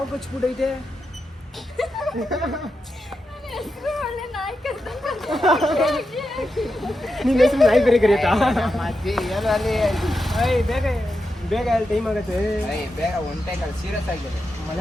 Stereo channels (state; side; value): normal; both; correlation 0.88